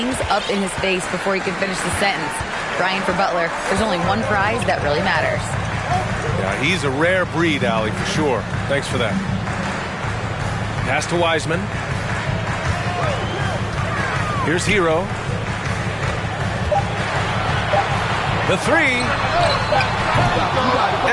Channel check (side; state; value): both; identical; correlation 1.00